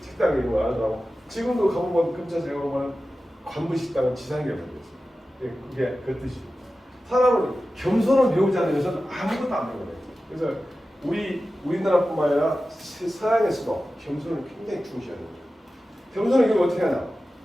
식당에 있는 거 알더라고. 지금도 가보면 근처에 가보면 관부식당은 지상경이 됐어요. 그게 그 뜻이죠. 사람은 겸손을 배우지 않는 것은 아무것도 안 되는 거예요. 그래서 우리나라뿐만 아니라 서양에서도 겸손을 굉장히 중시하는 거죠. 겸손은 이걸 어떻게 하냐?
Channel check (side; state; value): both; normal; correlation 0.94